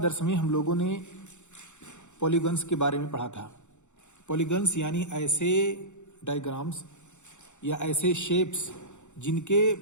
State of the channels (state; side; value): late; right; 0.84 ms